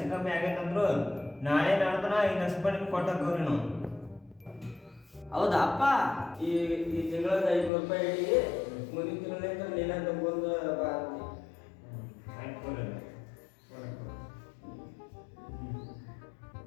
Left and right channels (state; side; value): drops out; right; at 7.7 s